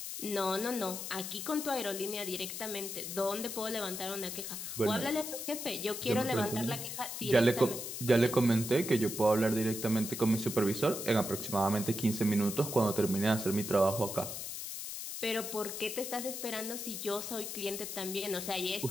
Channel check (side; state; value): left; noise; hiss, 6 dB below the sound